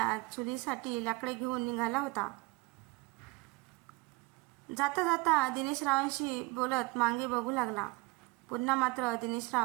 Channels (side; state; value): left; quieter; 23.9 dB